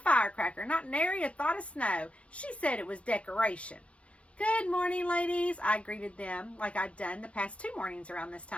firecracker, not nary a thought of snow. She said it was decoration. Good morning, ladies. I greeted them like I'd done the past 2 mornings around this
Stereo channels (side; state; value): right; late; 0.062 ms